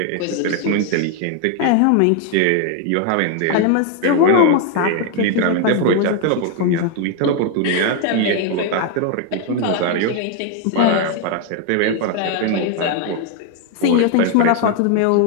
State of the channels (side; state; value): both; different; correlation 0.01